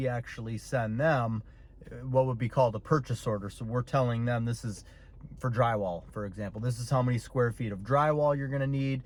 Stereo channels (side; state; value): both; identical; correlation 1.00